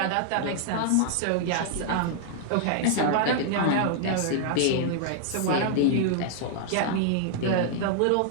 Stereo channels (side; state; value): both; different; correlation -0.01